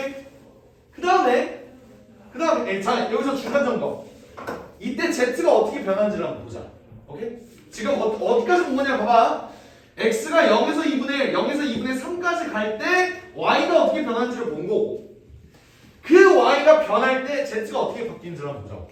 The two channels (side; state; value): both; identical; correlation 1.00